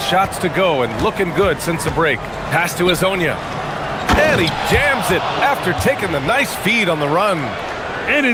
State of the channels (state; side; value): identical; both; correlation 1.00